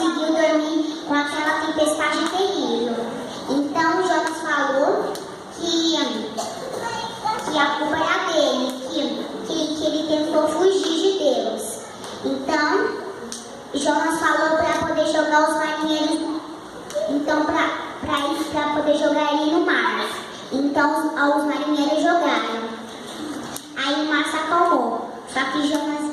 dormir com aquela tempestade terrível. Então Jonas falou que a culpa era dele, que ele tentou fugir de Deus. Então Jonas falou para poder jogar os marinheiros, então para poder jogar ele no mar. Então os marinheiros jogaram. Aí o mar se acalmou. Só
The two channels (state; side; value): identical; both; correlation 1.00